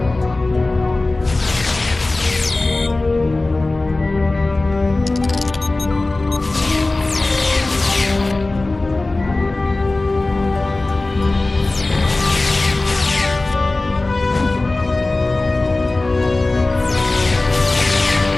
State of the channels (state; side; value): quieter; right; 3.0 dB